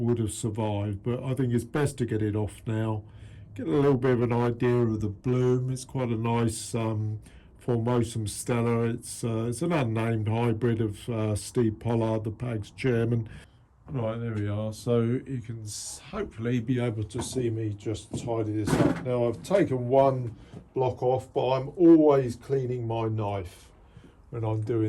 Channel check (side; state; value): both; identical; correlation 1.00